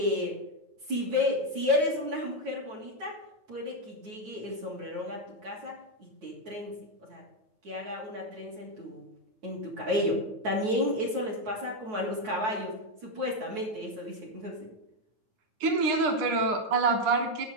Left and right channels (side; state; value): left; late; 9.3 ms